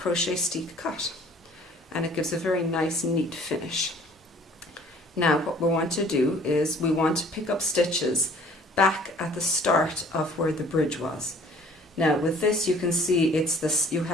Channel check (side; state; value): both; normal; correlation 0.54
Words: steek cut, and it gives a very nice neat finish. Now what we want to do is we want to pick up stitches back at the start of where the bridge was. Now with this you can see it's this,